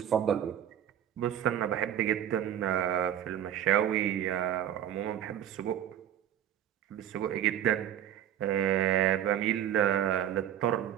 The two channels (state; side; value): quieter; left; 10.6 dB